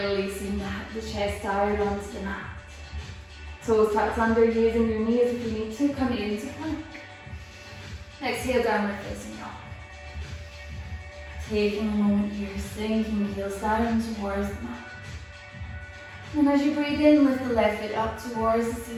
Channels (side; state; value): both; identical; correlation 1.00